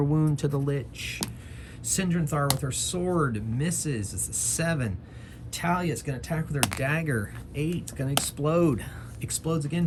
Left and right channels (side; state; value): both; identical; correlation 1.00